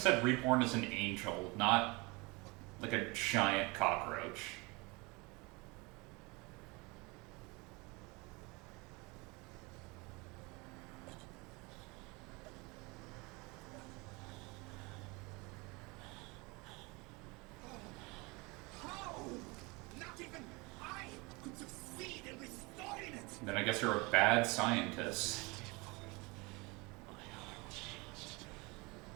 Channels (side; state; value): left; quieter; 26.2 dB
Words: reborn as an angel, not like a giant cockroach. How? Not even I could succeed in restoring it! Then I guess you're a bad scientist.